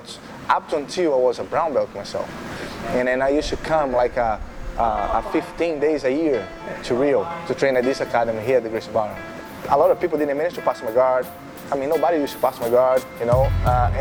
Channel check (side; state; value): both; identical; correlation 1.00